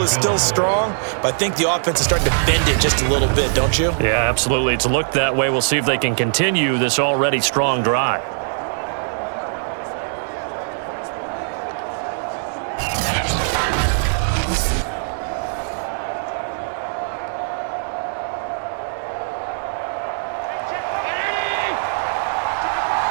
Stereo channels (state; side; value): silent; left; digital silence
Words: is still strong, but I think the offense is starting to bend it just a little bit, don't you? Yeah, absolutely. It's looked that way. We'll see if they can continue this already strong drive.